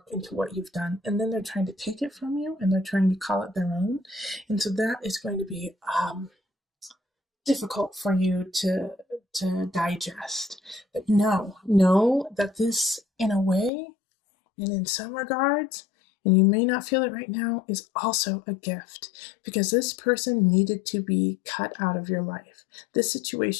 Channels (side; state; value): right; drops out; at 13.7 s